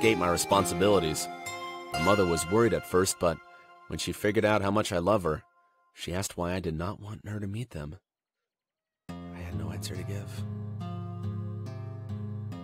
my responsibilities. My mother was worried at first, but when she figured out how much I love her, she asked why I did not want her to meet them. I had no answer to give.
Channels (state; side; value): identical; both; correlation 1.00